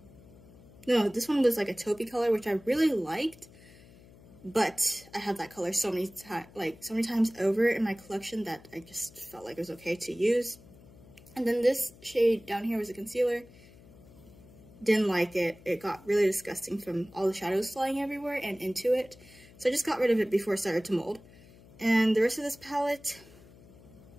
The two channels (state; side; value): noise; left; hum, 23 dB below the sound